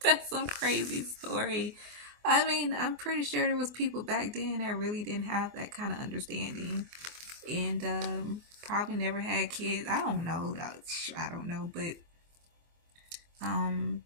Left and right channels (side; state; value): left; late; 24 ms